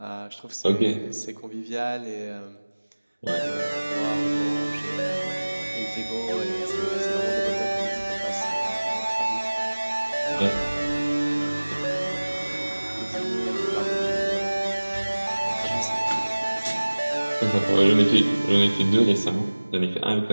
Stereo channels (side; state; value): both; inverted; correlation -1.00